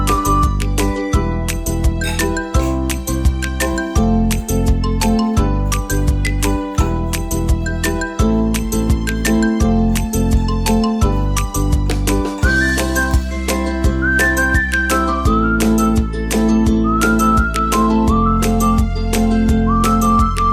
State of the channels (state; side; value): identical; both; correlation 1.00